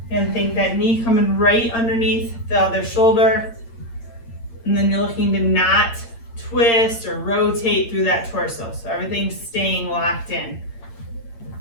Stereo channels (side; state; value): right; late; 8.7 ms